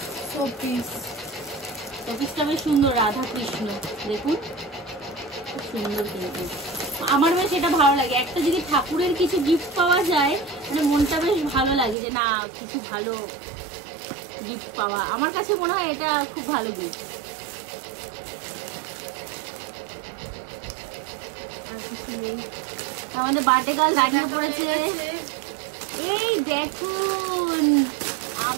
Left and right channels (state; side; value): drops out; left; at 12.0 s